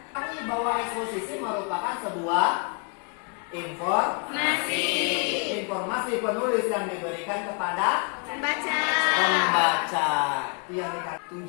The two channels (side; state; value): right; quieter; 36.0 dB